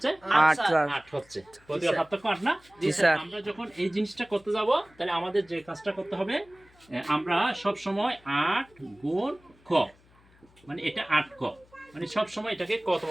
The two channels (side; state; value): left; noise; hum, 29 dB below the sound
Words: 8 স্যার। 8 হচ্ছে। প্রতিবার স্যার। পার্থক্য 8 না? জি স্যার। আমরা যখন এই জিনিসটা করতে যাব তাহলে আমাদের যে কাজটা করতে হবে, আমরা সব সময় 8 গুণ ক, মানে এটা 8 ক, মানে সব সময় এটাকে কতম